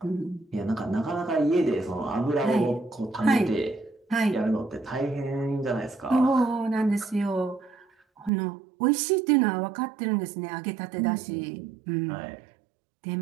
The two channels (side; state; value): left; drops out; at 8.3 s